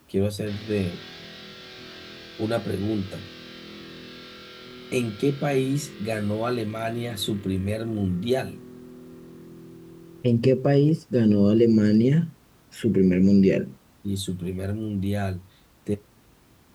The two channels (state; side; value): identical; both; correlation 1.00